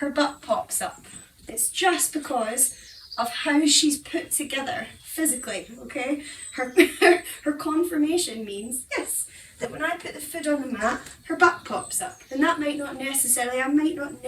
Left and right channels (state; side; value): identical; both; correlation 1.00